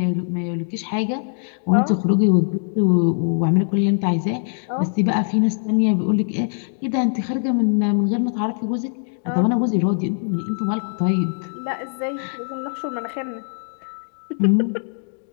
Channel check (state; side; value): silent; right; 64 dB below the other